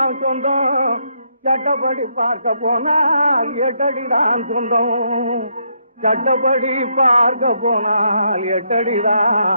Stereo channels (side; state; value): both; inverted; correlation -0.76